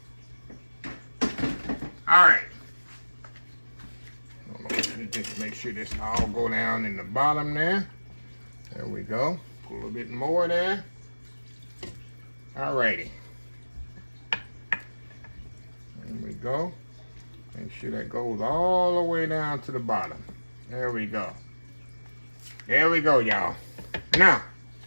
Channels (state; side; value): inverted; both; correlation -1.00